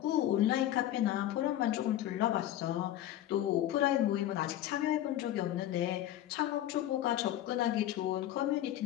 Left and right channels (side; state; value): right; quieter; 12.9 dB